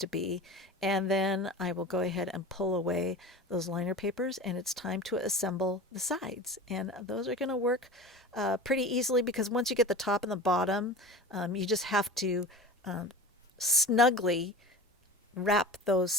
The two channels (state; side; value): normal; both; correlation 0.34